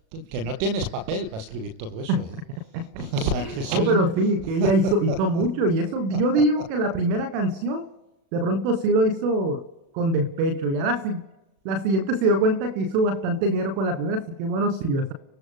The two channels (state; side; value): late; left; 36 ms